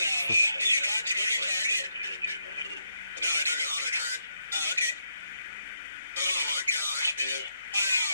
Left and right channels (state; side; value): inverted; both; correlation -0.78